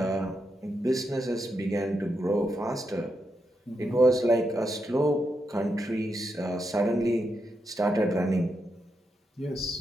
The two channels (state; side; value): normal; both; correlation 0.83